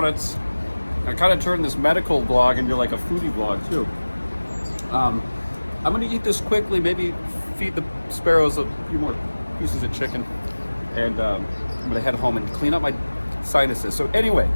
I kind of turned this medical vlog into like a foodie vlog too. I'm gonna eat this quickly, maybe feed the sparrows a few more pieces of chicken, and I'm gonna head home and clean up my sinuses. So anyway,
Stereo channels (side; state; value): both; inverted; correlation -1.00